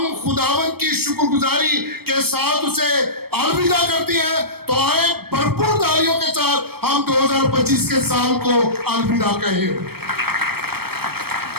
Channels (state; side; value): late; left; 0.96 ms